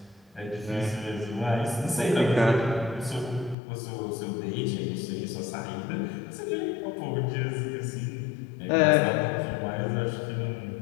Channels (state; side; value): drops out; right; at 3.6 s